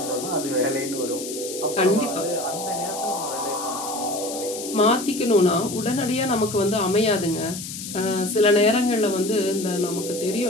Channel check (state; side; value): noise; left; hiss, 9 dB below the sound